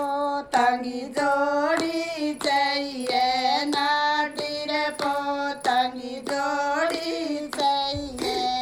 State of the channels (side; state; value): both; identical; correlation 1.00